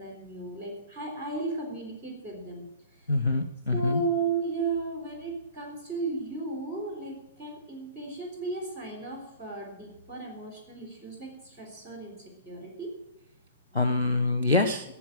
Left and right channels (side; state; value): both; inverted; correlation -0.46